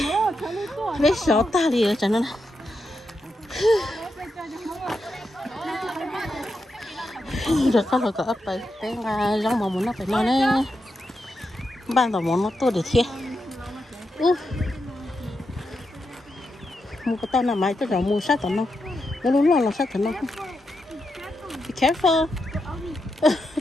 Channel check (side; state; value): both; normal; correlation 0.86